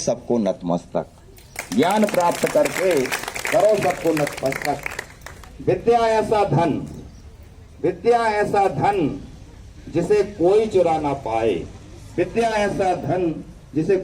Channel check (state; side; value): identical; both; correlation 1.00